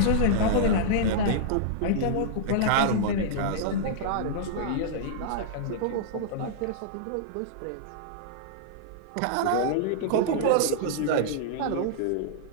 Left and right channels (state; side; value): different; both; correlation -0.02